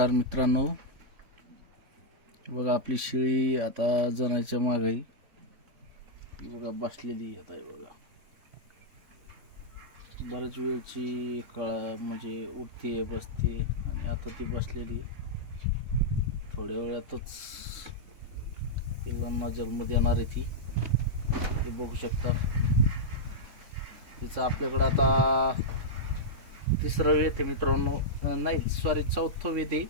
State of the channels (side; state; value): left; late; 3.5 ms